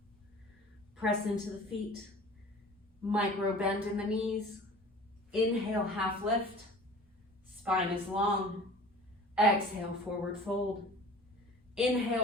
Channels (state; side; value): normal; both; correlation 0.44